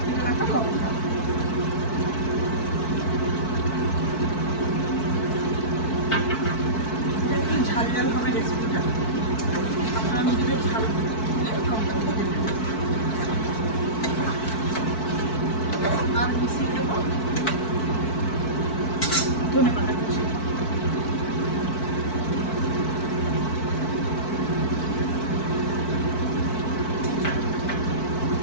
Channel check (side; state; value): right; late; 4.6 ms